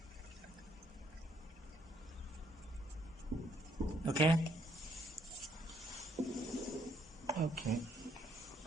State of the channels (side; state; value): both; normal; correlation 0.69